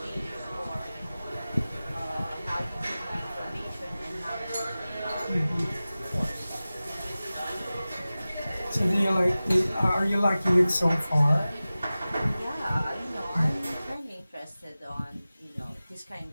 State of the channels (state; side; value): inverted; both; correlation -0.97